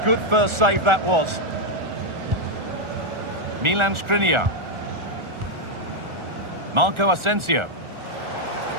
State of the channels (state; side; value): late; left; 1.4 ms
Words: good first save that was. Milan Skriniar. Marco Asensio.